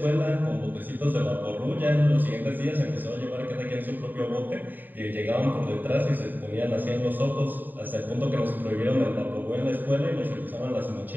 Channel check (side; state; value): left; late; 0.090 ms